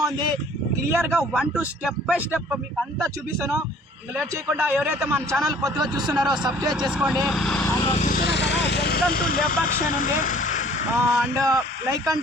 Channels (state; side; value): normal; both; correlation 0.54